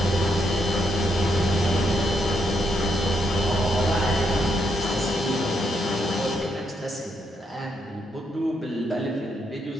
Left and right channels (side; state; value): both; normal; correlation 0.78